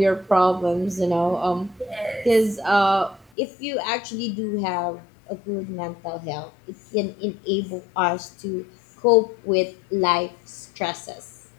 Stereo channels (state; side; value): drops out; right; at 3.2 s